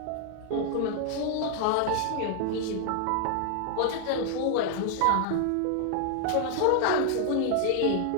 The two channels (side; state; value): both; different; correlation 0.00